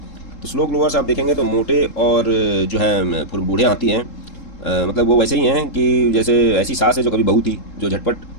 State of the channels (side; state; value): right; late; 3.7 ms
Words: तो स्लो ग्रोवर्स आप देखेंगे तो मोटे और जो है बूढ़े हाथी हैं, मतलब वो वैसे ही हैं कि जैसे ऐसी सास है जो कभी बहू थी, जो झटपट